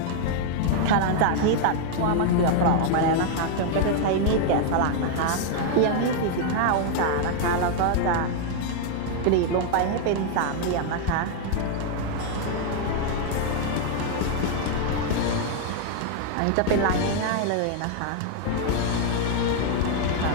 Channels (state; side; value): different; both; correlation 0.00